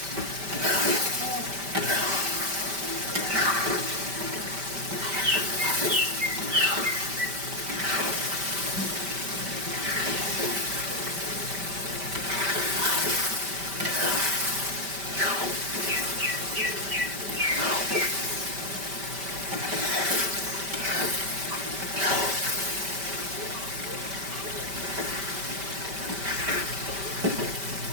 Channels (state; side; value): late; left; 5.1 ms